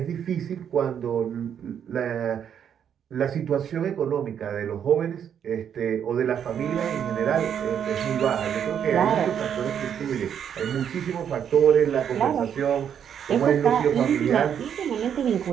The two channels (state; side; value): quieter; left; 8.5 dB